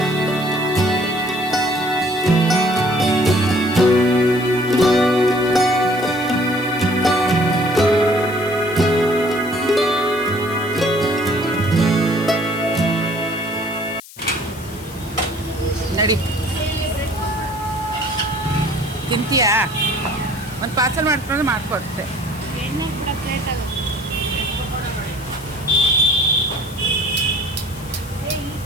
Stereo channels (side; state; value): left; noise; hiss, 18 dB below the sound